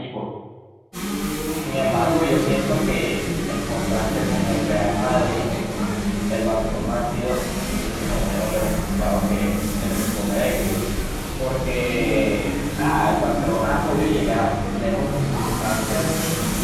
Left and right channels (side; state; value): both; identical; correlation 1.00